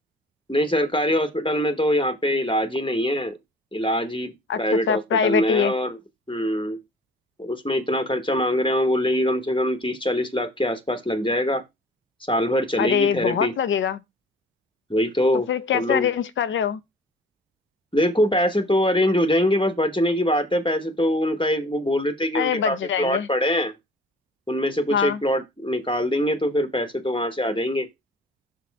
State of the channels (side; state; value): both; normal; correlation 0.47